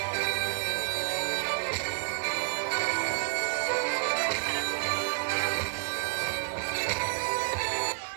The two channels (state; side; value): silent; left; digital silence